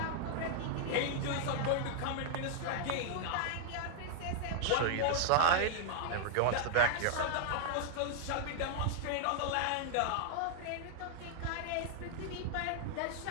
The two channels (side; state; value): both; different; correlation -0.01